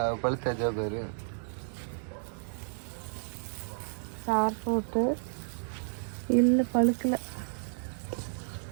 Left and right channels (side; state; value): left; silent; digital silence